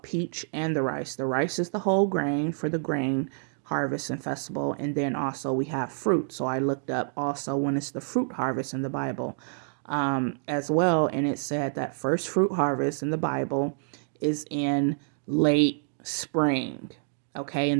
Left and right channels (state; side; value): silent; left; digital silence